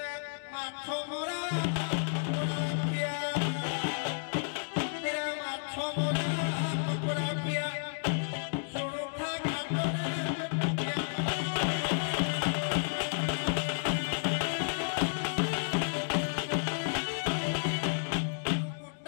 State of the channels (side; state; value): right; silent; digital silence